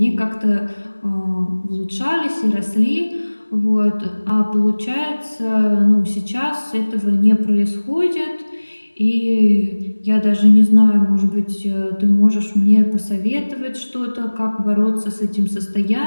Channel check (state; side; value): inverted; both; correlation -1.00